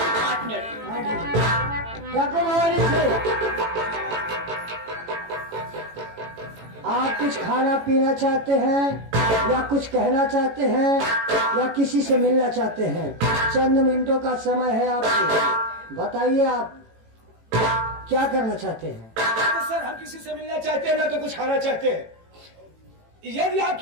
8 मिनट। आप कुछ खाना पीना चाहते हैं या कुछ कहना चाहते हैं या किसी से मिलना चाहते हैं? चंद मिनटों का समय है आपको, बताइए आप क्या करना चाहते हैं? तो सर हम किसी से मिलना चाहते हैं ना तो कुछ खाना चाहते हैं। यदि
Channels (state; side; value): late; left; 18 ms